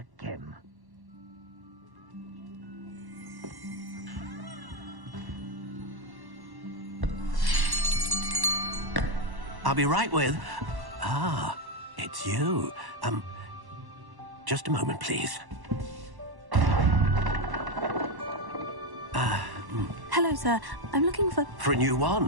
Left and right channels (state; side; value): late; left; 1.1 ms